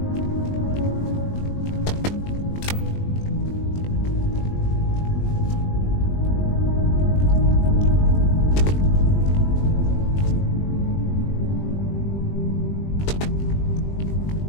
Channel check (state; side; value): late; right; 20 ms